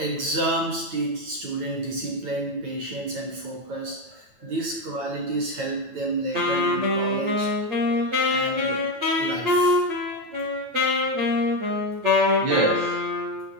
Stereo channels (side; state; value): left; late; 9.1 ms